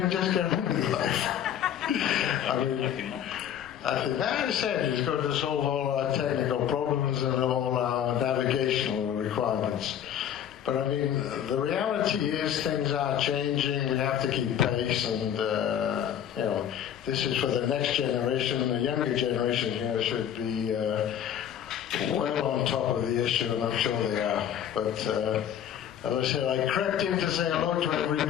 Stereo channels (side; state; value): right; quieter; 9.7 dB